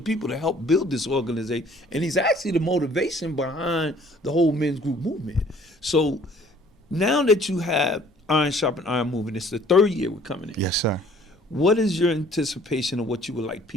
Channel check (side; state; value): both; normal; correlation 0.56